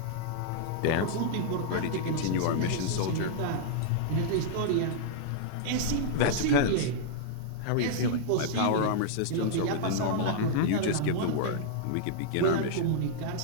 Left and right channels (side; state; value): both; different; correlation -0.01